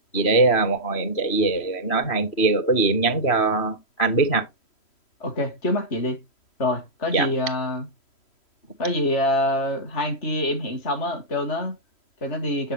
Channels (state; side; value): late; right; 3.1 ms